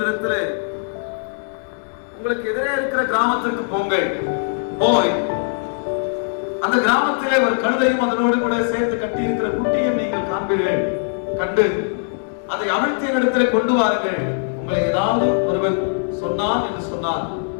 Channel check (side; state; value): right; silent; 65 dB below the other